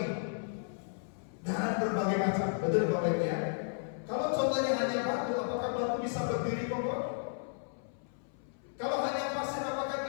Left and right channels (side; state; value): right; silent; 55 dB below the other